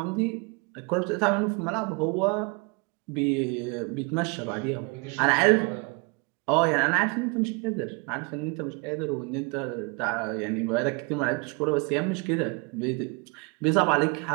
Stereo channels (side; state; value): left; quieter; 31.3 dB